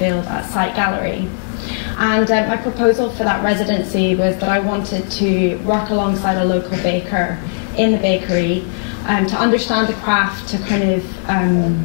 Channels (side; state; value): right; silent; digital silence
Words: at Site Gallery. And my proposal for that residency was that I wanted to work alongside a local baker in the bakery to understand the craft, to kind of